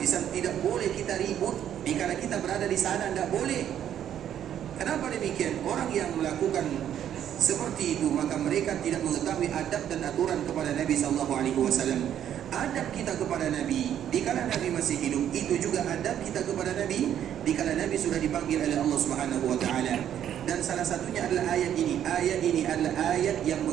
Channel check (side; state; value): left; quieter; 10.2 dB